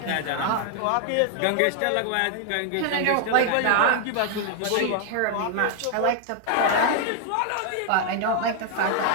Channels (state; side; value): different; both; correlation 0.00